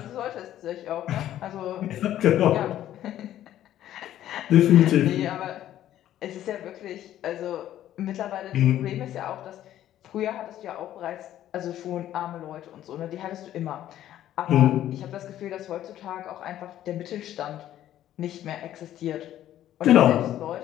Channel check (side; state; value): right; quieter; 12.3 dB